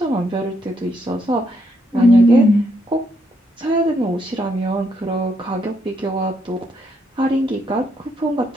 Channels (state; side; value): normal; both; correlation 0.75